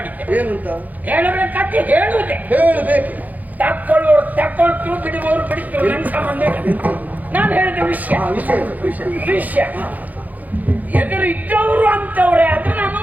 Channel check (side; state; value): left; late; 0.080 ms